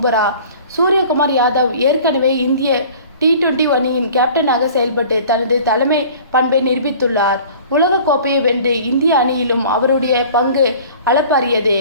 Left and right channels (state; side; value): inverted; both; correlation -0.46